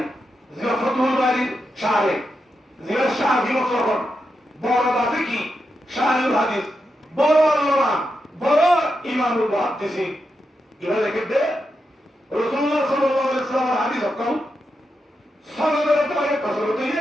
জিয়া ফাতুল বারি শারে জিয়া শাহি মুসলমান বড় দাবি কি শাহুল হাদিস বড় আল্লামা বড় ইমামুল মুহাদ্দিসিন এরা লিখে রাসূলুল্লাহ সাল্লাল্লাহু আলাইহি ওয়াসাল্লামের হাদিস হকম সনদের তারিখ কসরত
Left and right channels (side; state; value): both; normal; correlation 0.86